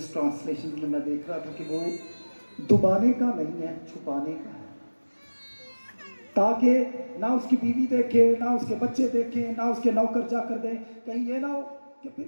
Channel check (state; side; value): inverted; both; correlation -1.00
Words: ٹرانسلیشن میں دیکھ رہا تھا کہ وہ دبانے کا نہیں ہے، چھپانے کا ہے، تاکہ نہ اس کی بیوی دیکھے، نہ اس کے بچے دیکھیں، نہ اس کے نوکر جا کر دیں، کہیں یہ نہ ہو کہ